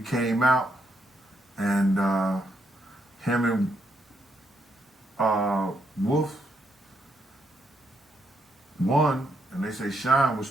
came out, and him and Wolf won, and they say Shine was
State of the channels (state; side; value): normal; both; correlation 0.77